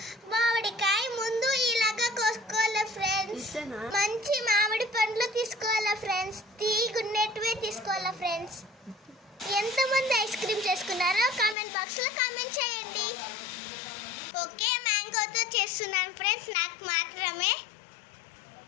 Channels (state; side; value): drops out; right; at 11.6 s